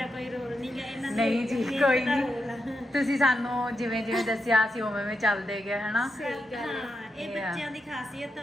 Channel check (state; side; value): normal; both; correlation 0.86